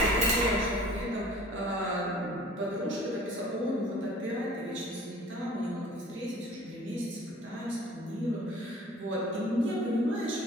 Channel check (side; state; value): both; normal; correlation 0.48